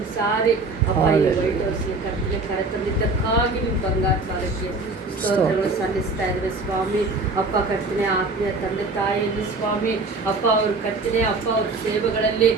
ಸಾರಿ ಅಪ್ಪ ಈ ವೈಟ್ ಹೌಸ್ಗೆ ಕರ್ತನೆ ಕರೆತಂದಿದ್ದಕ್ಕಾಗಿ ನಿಮ್ಮ ಬಂಗಾರ ಕಾಲಕ್ಕೆ ಸ್ತೋತ್ರಗಳು ಸಲ್ಲಿಸ್ತಾ ಇದ್ದಾರೆ ಸ್ವಾಮಿ. ಅಪ್ಪ ಕರ್ತನೆ ಆತ್ಮೀಯ ತಂದೆ ತಾಯಿಯಲ್ಲಿ ಸ್ವಾಮಿ ಅಪ್ಪ ಅವರು ಕರ್ತನೆ ಅಪ್ಪ ಅವ್ರ ಸೇವೆಗಳಲ್ಲಿ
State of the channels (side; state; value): left; quieter; 3.4 dB